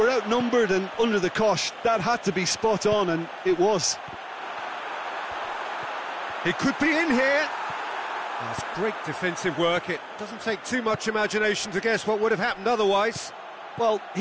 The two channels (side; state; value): both; identical; correlation 1.00